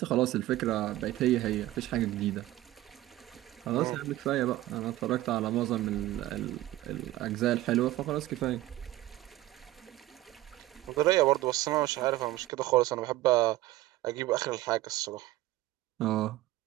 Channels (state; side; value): quieter; left; 16.2 dB